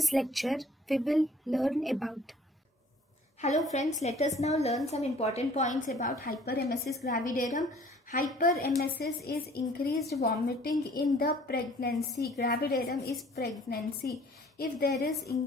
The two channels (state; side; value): normal; both; correlation 0.54